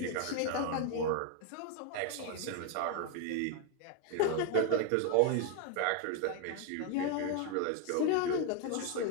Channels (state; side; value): different; both; correlation 0.01